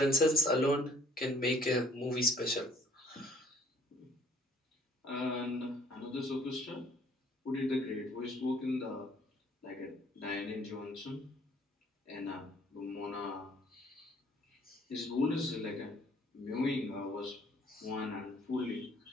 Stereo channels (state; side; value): normal; both; correlation 0.58